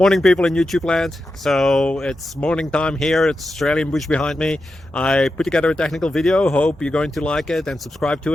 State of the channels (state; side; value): normal; both; correlation 0.90